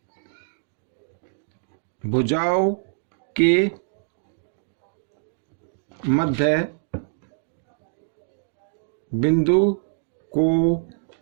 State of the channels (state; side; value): silent; left; digital silence